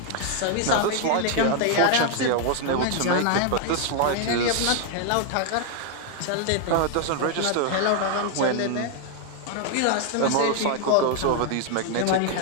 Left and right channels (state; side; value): different; both; correlation 0.00